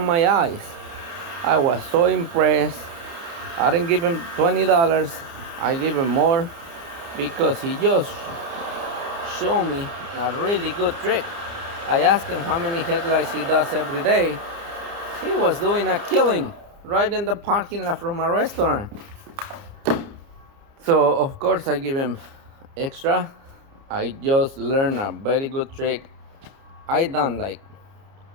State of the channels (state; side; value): late; left; 29 ms